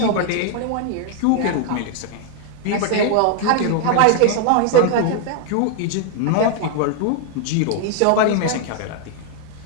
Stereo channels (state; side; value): different; both; correlation 0.00